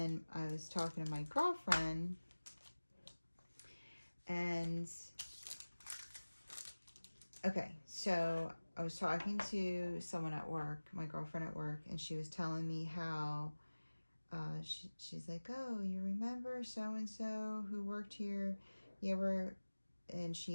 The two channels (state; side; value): inverted; both; correlation -1.00